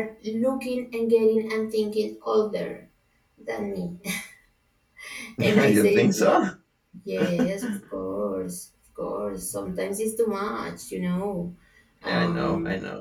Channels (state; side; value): identical; both; correlation 1.00